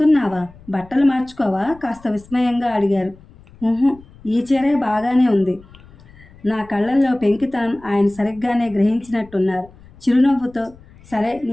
బట్టలు మార్చుకోవా కాస్త విస్మయంగా అడిగారు. ఈ చీరే బాగానే ఉంది. నా కళ్ళల్లో పెంకితనం ఆయన సరిగ్గానే గ్రహించినట్టున్నారు. చిరునవ్వుతో, సరే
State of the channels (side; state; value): left; noise; rumble, 24 dB below the sound